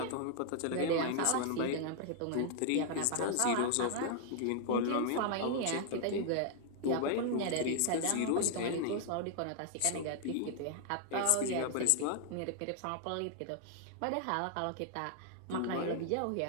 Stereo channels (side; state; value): both; different; correlation 0.00